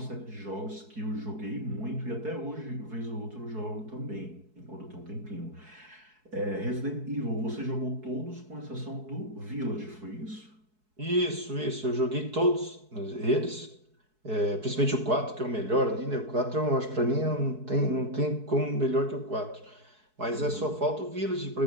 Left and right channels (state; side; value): late; left; 4.7 ms